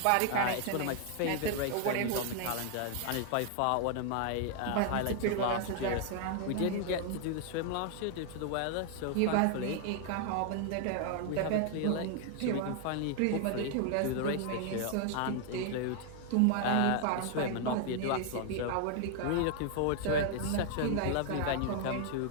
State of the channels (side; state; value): both; different; correlation 0.00